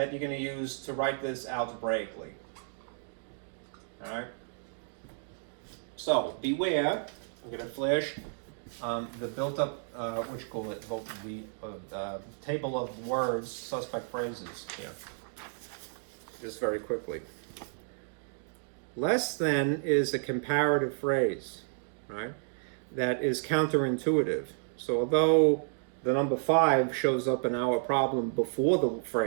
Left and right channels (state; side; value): silent; left; digital silence